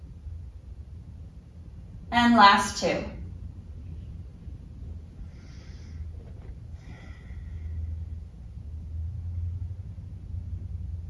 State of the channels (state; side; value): identical; both; correlation 1.00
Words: And last two.